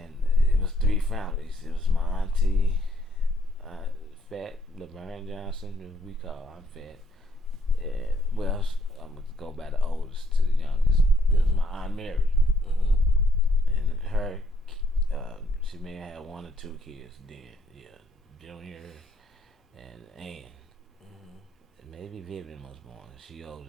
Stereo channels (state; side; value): normal; both; correlation 0.68